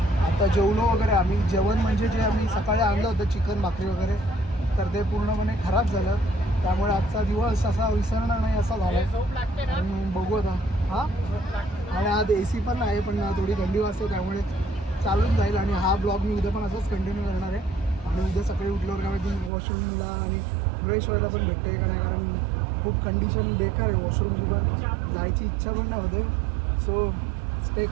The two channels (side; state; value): left; drops out; at 19.5 s